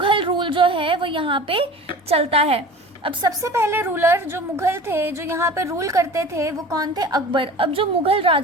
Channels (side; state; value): both; normal; correlation 0.39